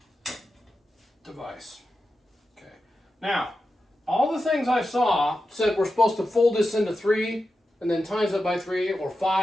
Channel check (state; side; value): normal; both; correlation 0.91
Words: device. Okay. Now, all the things I saw said we're supposed to fold this into 3 and then times it by 3 or